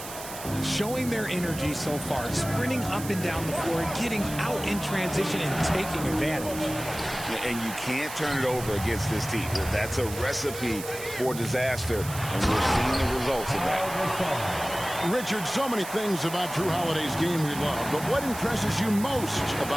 Showing their energy so far, sprinting up and down the floor, getting out in transition and taking advantage. And you can't turn it over against this team. That's a recipe for disaster, and we're seeing the results of that. Richard, so many things about Drew Holiday's game we love, but what impresses you most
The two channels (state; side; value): noise; right; hiss, 11 dB below the sound